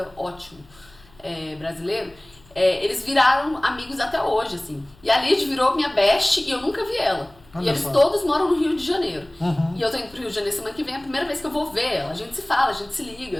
ótimo, brasileiro, eles viraram amigos até hoje, assim. E a Lídia virou minha best e eu nunca vi ela. E eles todos moram no Rio de Janeiro. E eu tô indo pro Rio de Janeiro semana que vem, é a primeira vez que eu vou ver ela. A gente se fala, a gente se liga,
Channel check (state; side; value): noise; left; hum, 27 dB below the sound